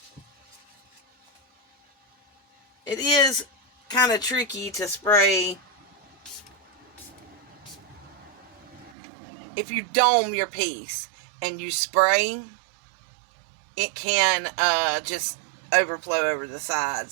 It is kind of tricky to spray if you dome your piece and you spray. It can just overflow over the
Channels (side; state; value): left; drops out; at 9.0 s